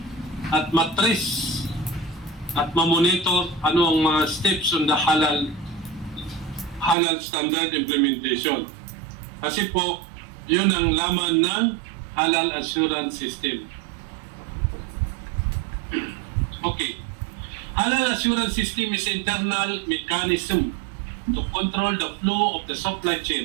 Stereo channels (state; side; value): drops out; left; at 7.0 s